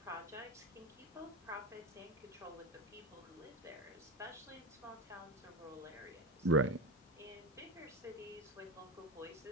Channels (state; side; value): normal; both; correlation 0.19